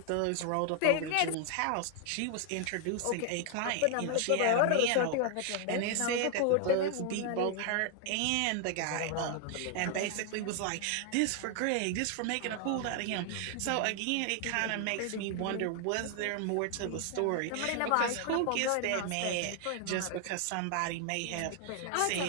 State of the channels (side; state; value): both; different; correlation 0.00